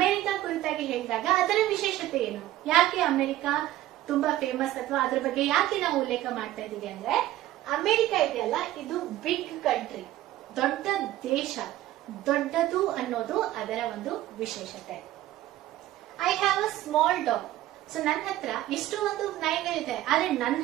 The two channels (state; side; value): quieter; left; 14.6 dB